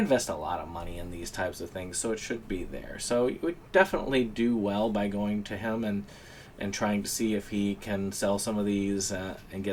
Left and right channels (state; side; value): identical; both; correlation 1.00